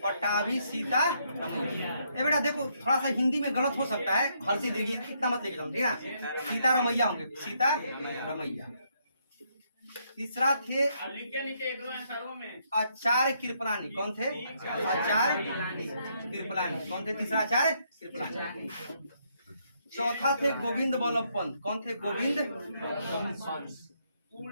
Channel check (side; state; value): both; inverted; correlation -0.74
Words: ए बेटा देखो, थोड़ा सा हिंदी में गलत हो सकता है, हर्षी दीर्घी इतना मत लेके चलो, ठीक है? सीतारमैया होंगे, सीतारमैया। तीसरा थे आचार्य कृपलानी। कौन थे? आचार्य कृपलानी। कौन थे? तीसरा आचार्य कृपलानी। चौथा थे गोविंद बल्लभ पंत। कौन थे? गोविंद